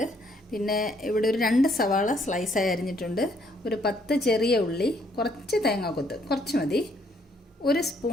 പിന്നെ ഇവിടെ ഒരു 2 സവാള സ്ലൈസായി അരിഞ്ഞിട്ടുണ്ട്, ഒരു 10 ചെറിയ ഉള്ളി, കുറച്ച് തേങ്ങാക്കൊത്ത്, കുറച്ച് മതി, 1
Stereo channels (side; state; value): both; normal; correlation 0.68